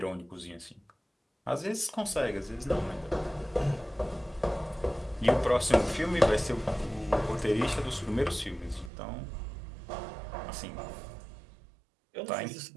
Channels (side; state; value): left; drops out; at 8.9 s